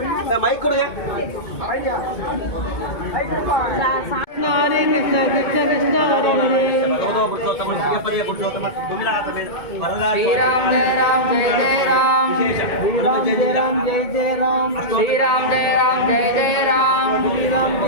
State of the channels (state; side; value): late; right; 2.2 ms